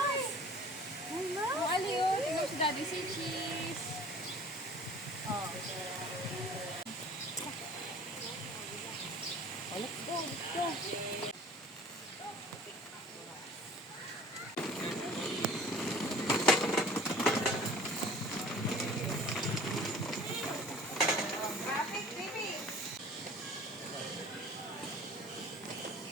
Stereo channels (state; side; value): normal; both; correlation 0.47